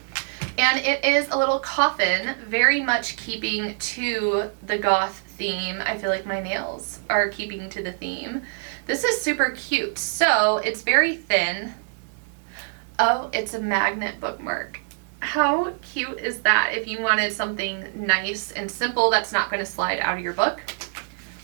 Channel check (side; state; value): left; silent; 62 dB below the other